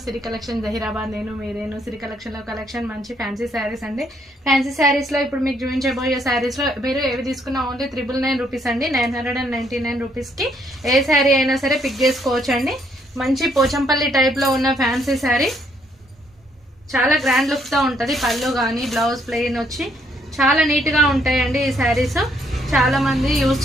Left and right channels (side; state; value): both; normal; correlation 0.70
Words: Siri collection Zaheerabad. నేను సిరి collection లో collection మంచి ఫ్యాన్సీ శారీస్ అండి. ఫ్యాన్సీ శారీస్ లో ఇప్పుడు మీకు చూపించబోయే శారీస్ లో మీరు ఏవి తీసుకున్నా ఓన్లీ 999 రూపీస్ అండి. 999 రూపీస్ కి ఏ శారీ అయినా సరే పిక్ చేసుకోవచ్చు అండి. మంచి పోచంపల్లి టైప్ లో ఉన్న ఫ్యాన్సీ శారీ, చాలా గ్రాండ్ లుక్ తో ఉంటది. పళ్ళు కానీ బ్లౌజ్ ప్లెయిన్ వచ్చి చాలా నీట్ గా ఉంటాయండి ఈ శారీస్. చాలా మంది యూజ్